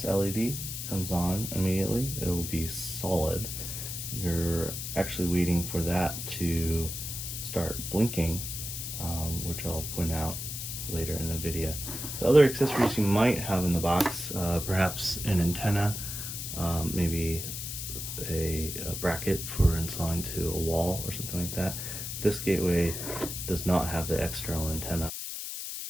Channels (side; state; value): left; noise; hiss, 6 dB below the sound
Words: LED comes on immediately. It will be solid. You're actually waiting for that to start blinking, which I'll point out later in the video. The other accessories you might have in the box, perhaps an antenna, maybe a bracket for installing to a wall or something like that. This gateway does not have the external antenna.